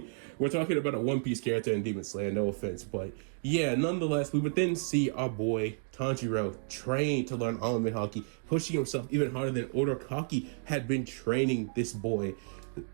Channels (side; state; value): left; silent; 57 dB below the other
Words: we're talking about a One Piece character in Demon Slayer, no offense, but yeah, nonetheless, we would then see our boy Tanjiro train to learn Armament Haki, pushing himself even harder than Uraraki had been training this boy